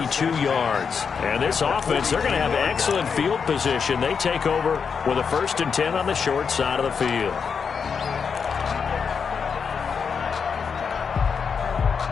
yards. And this offense, they're going to have excellent field position. They take over with a 1st and 10 on the short side of the field.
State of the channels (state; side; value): quieter; right; 6.1 dB